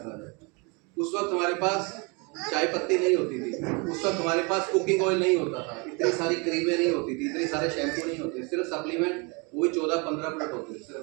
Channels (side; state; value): left; quieter; 30.6 dB